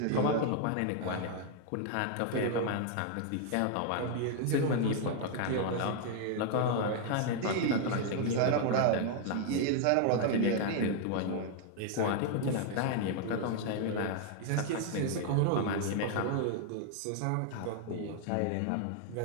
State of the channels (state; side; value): different; both; correlation 0.00